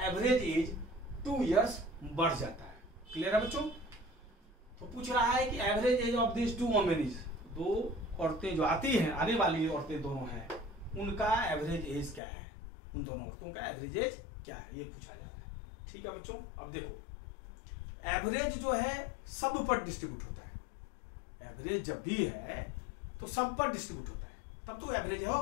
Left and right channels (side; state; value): right; drops out; at 12.2 s